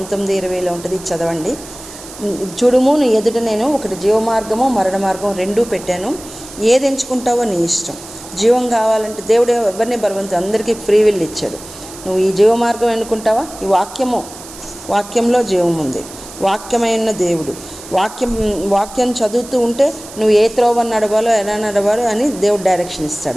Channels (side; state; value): right; noise; hiss, 16 dB below the sound